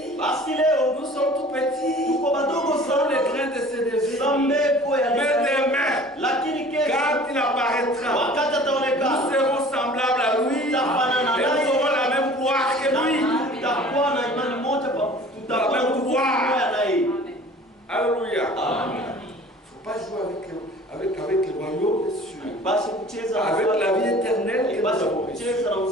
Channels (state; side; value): normal; both; correlation 0.46